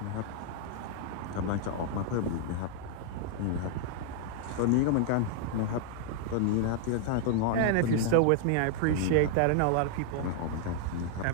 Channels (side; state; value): both; different; correlation 0.00